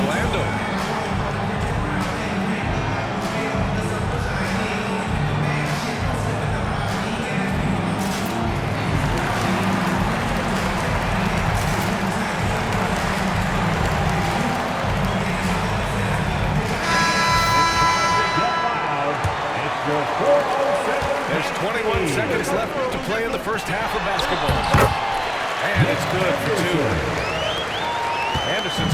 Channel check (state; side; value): identical; both; correlation 1.00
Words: There's 21 seconds left to play in the first half of basketball. And it's good for 2. Anderson's